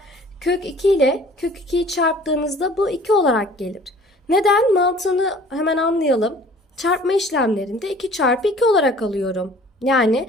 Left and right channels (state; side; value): normal; both; correlation 0.50